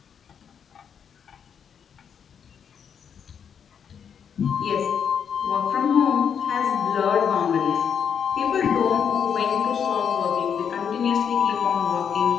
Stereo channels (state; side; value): quieter; right; 7.5 dB